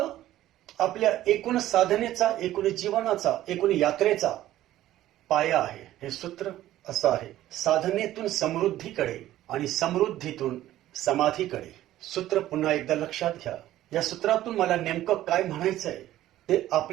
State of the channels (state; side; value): quieter; left; 14.0 dB